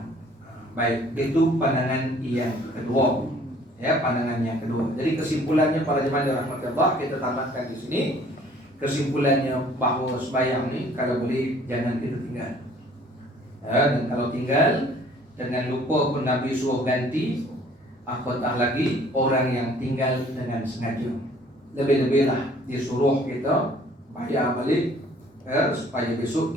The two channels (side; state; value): both; normal; correlation 0.56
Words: Baik, itu pandangan yang kedua. Ya, pandangan yang kedua. Jadi kesimpulannya para jemaah rahmatullah, kita tamatkan di sini. Kesimpulannya bahawa sembahyang ni kalau boleh jangan kita tinggal. Dan kalau tinggal dengan lupa pun Nabi suruh ganti, apatah lagi orang yang tinggal dengan sengaja. Lebih-lebihlah dia suruh kita bayar balik, supaya besok